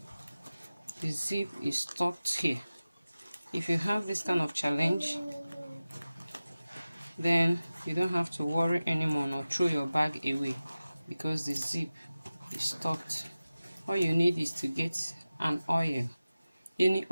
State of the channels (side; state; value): both; inverted; correlation -0.96